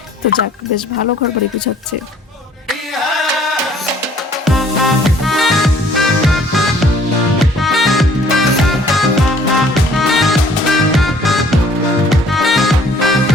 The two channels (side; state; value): both; normal; correlation 0.57